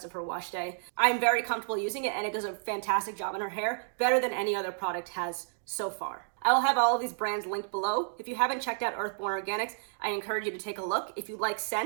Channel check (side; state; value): left; silent; digital silence